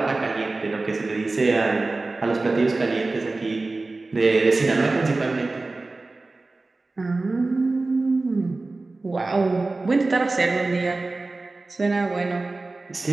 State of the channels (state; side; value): quieter; left; 3.3 dB